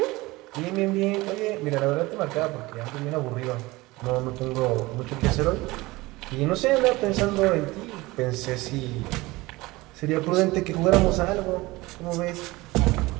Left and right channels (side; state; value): left; quieter; 20.9 dB